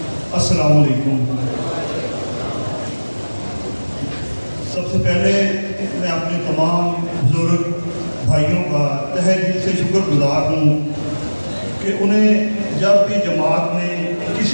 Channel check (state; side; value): inverted; both; correlation -1.00